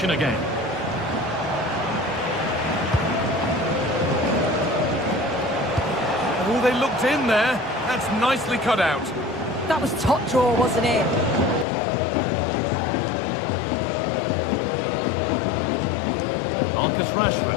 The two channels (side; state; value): right; drops out; at 11.7 s